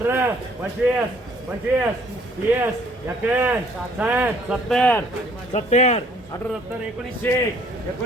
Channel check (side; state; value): both; normal; correlation 0.61